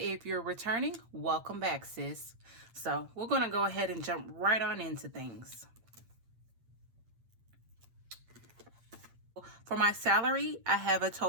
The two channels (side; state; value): left; late; 8.9 ms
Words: you're returning, welcome back, sis. So we're going to go ahead and jump right on into things. For my salary, I have a